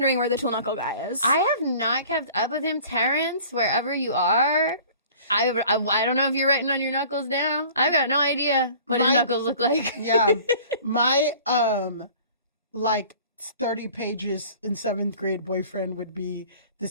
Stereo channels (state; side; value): inverted; both; correlation -0.48